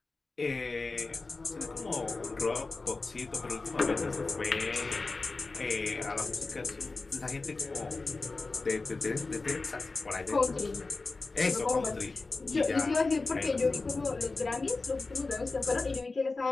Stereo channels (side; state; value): right; quieter; 3.6 dB